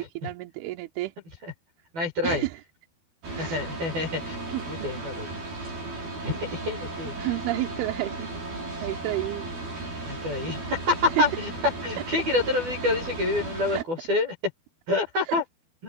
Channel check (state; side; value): late; left; 12 ms